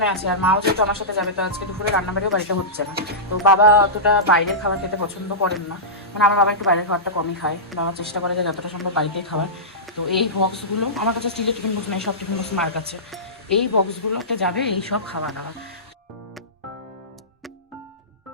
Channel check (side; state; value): both; normal; correlation -0.18